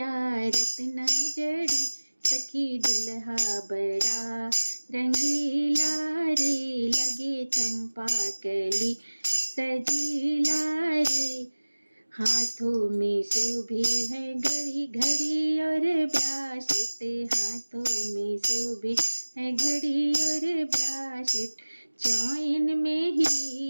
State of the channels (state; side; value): inverted; both; correlation -1.00